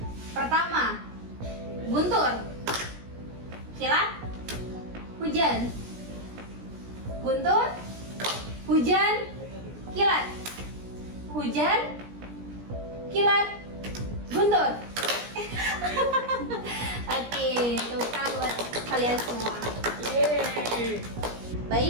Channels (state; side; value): late; left; 17 ms